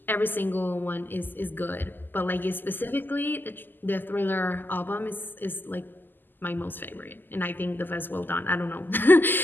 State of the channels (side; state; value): right; late; 0.090 ms